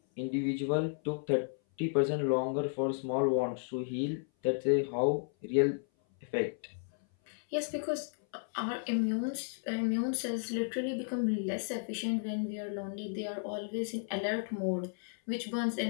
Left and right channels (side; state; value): right; silent; 55 dB below the other